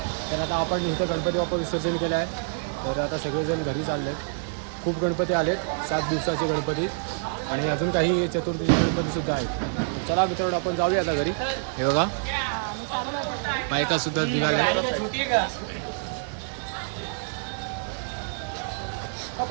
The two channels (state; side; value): silent; left; digital silence